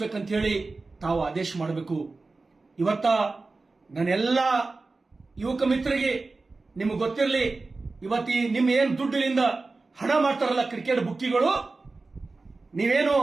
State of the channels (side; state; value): left; quieter; 3.6 dB